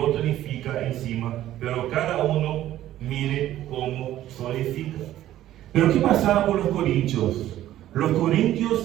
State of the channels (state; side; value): quieter; left; 13.3 dB